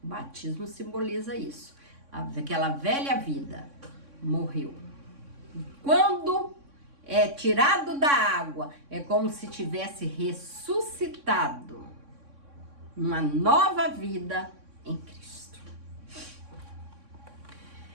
O batismo simboliza isso. Aquela velha vida morreu. E quando é tirado da água, é como se tivesse ressuscitado uma nova vida em Cristo.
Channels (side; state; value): left; late; 3.6 ms